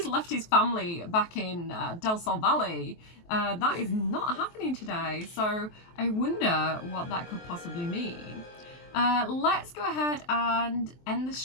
left his family back in Del Sol Valley. That is not happening today. So I wonder what that could possibly mean. Let's go ahead and end the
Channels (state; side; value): late; right; 23 ms